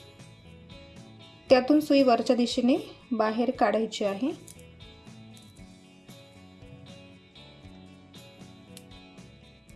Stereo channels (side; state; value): both; identical; correlation 1.00